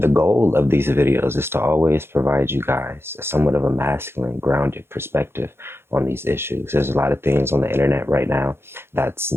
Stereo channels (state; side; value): late; left; 0.12 ms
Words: goal of these videos is to always provide you guys somewhat of a masculine, grounded perspective on these issues. There's a lot of things on the internet right now that's